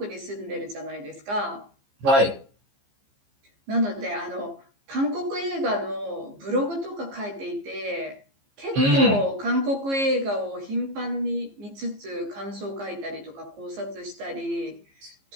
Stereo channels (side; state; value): left; late; 15 ms